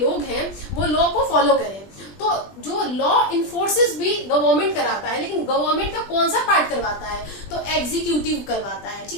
हैं वो लॉ को फॉलो करें। तो जो लॉ इन्फोर्सेस भी गवर्नमेंट कराता है, लेकिन गवर्नमेंट का कौन सा पार्ट करवाता है, तो एग्जीक्यूटिव करवाता है,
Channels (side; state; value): right; late; 20 ms